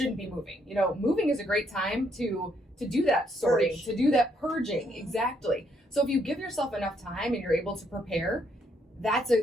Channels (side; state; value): both; normal; correlation 0.72